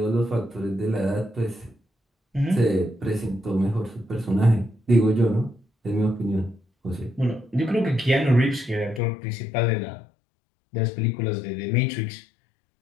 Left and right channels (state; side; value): drops out; right; at 9.0 s